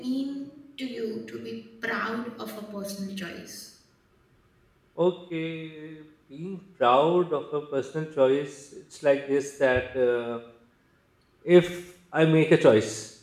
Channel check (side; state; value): both; identical; correlation 1.00